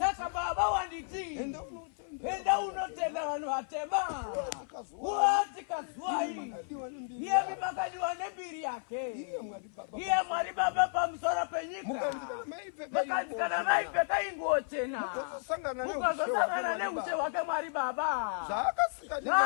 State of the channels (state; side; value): silent; right; 56 dB below the other